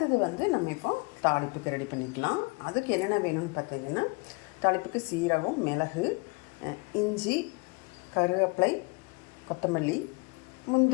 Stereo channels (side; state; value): right; quieter; 28.8 dB